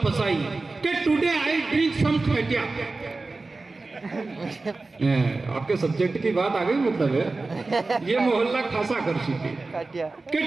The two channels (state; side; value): quieter; left; 3.6 dB